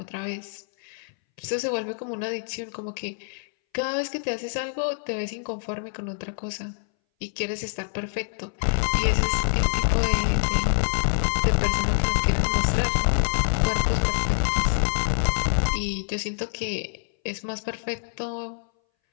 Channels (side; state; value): right; silent; 60 dB below the other